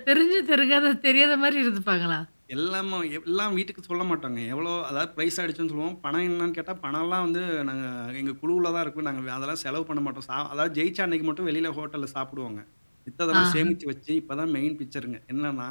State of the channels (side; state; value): both; inverted; correlation -1.00